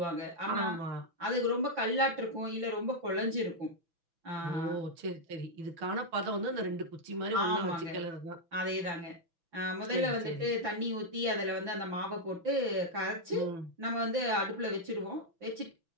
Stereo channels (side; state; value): left; late; 6.0 ms